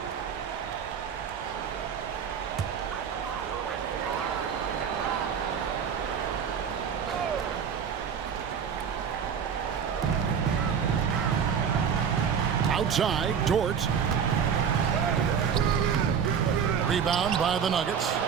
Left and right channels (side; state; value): left; quieter; 7.3 dB